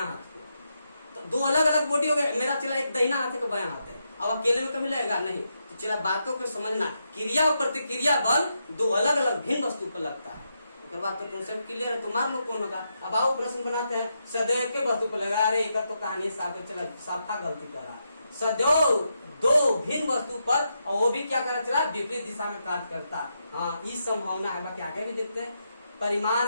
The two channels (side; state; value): both; inverted; correlation -0.83